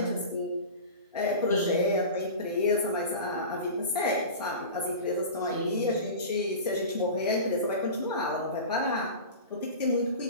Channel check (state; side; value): inverted; both; correlation -0.32